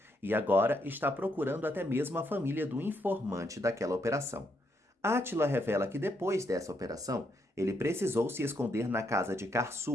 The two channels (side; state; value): both; normal; correlation 0.77